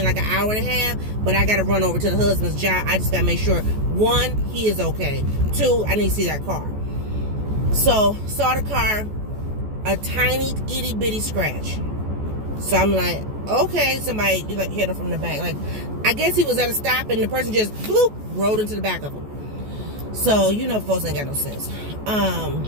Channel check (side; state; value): left; late; 14 ms